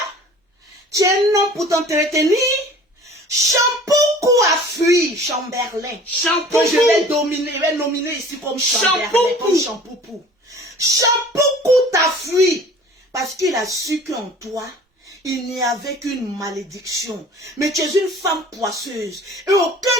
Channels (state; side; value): normal; both; correlation 0.46